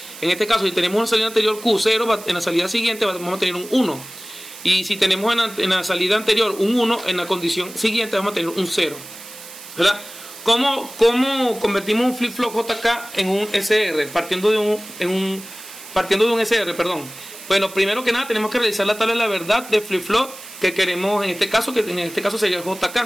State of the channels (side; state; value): right; noise; hiss, 15 dB below the sound